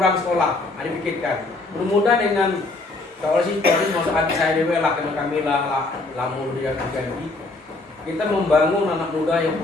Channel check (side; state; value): right; quieter; 3.2 dB